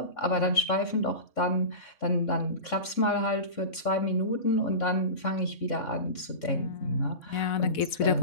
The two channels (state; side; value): late; right; 3.6 ms